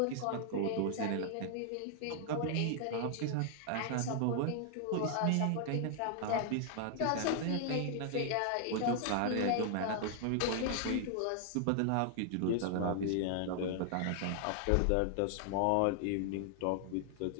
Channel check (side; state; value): both; different; correlation 0.00